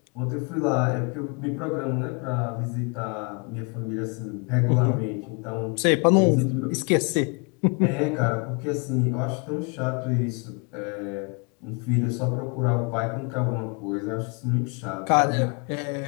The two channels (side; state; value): right; quieter; 34.4 dB